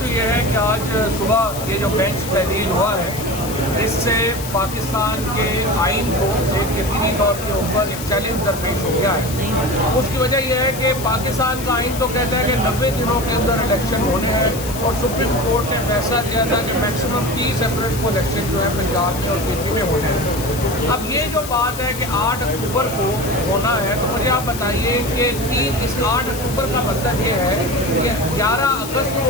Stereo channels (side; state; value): left; noise; hiss, 11 dB below the sound